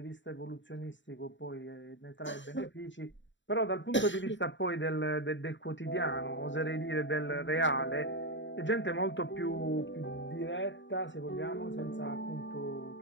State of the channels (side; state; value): right; late; 0.54 ms